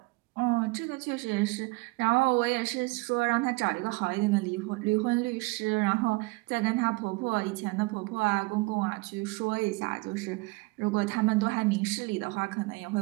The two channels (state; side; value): quieter; left; 25.1 dB